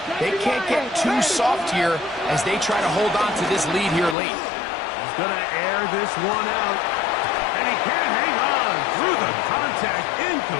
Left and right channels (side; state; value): right; drops out; at 4.2 s